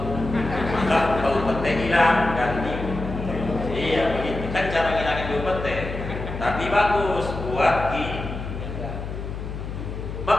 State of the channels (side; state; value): left; noise; hum, 7 dB below the sound